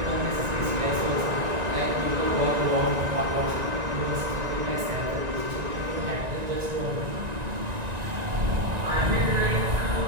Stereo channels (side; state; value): left; late; 1.9 ms